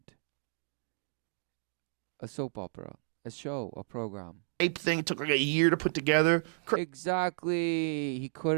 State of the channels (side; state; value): left; silent; digital silence